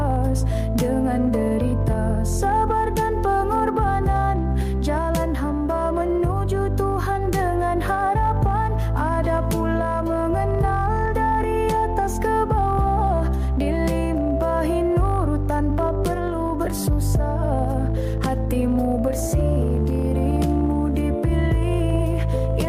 Dengan derita, sabar dan pengorbanan, jalan hamba menuju Tuhan dengan harapan. Ada pula mengenal dari atas ke bawah, dilimpahi nur tanpa perlu bersusah. Hatimu bersih, dirimu dipilih,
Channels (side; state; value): both; identical; correlation 1.00